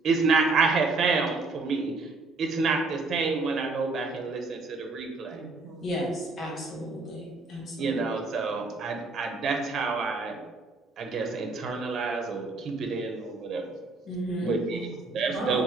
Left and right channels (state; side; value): quieter; left; 3.6 dB